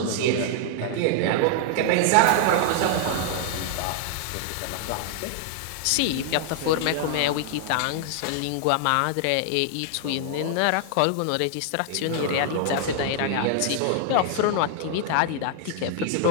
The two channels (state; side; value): different; both; correlation 0.00